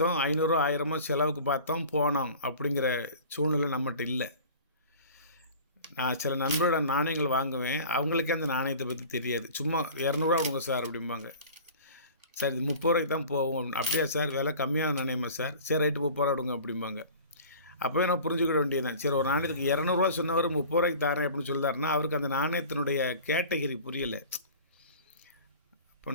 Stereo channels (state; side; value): inverted; both; correlation -0.42